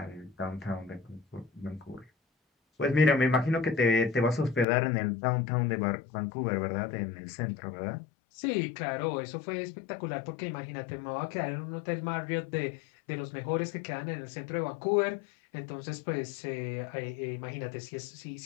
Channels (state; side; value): drops out; right; at 4.7 s